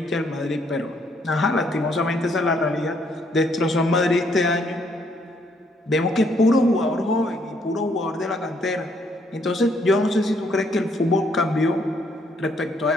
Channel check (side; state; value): both; normal; correlation 0.69